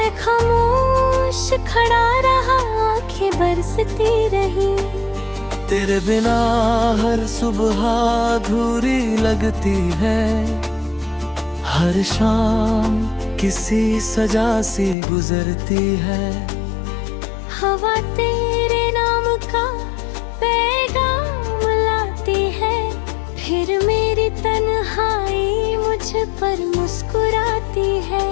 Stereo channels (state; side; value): drops out; right; at 15.0 s